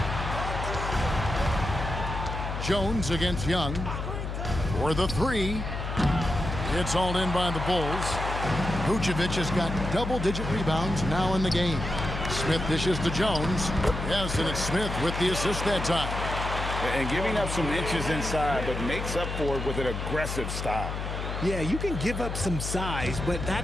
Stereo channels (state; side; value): noise; left; hum, 4 dB below the sound